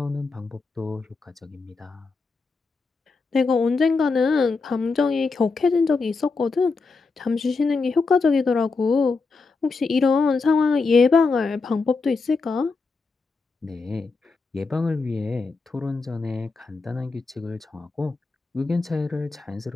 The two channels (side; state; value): right; quieter; 4.2 dB